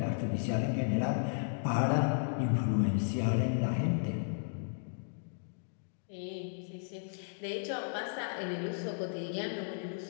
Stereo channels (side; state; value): right; silent; digital silence